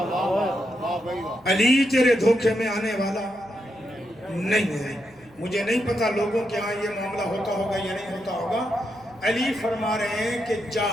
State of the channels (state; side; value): noise; left; hum, 30 dB below the sound